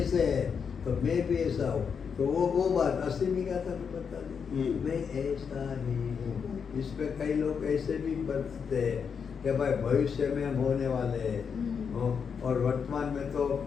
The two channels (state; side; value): quieter; right; 6.5 dB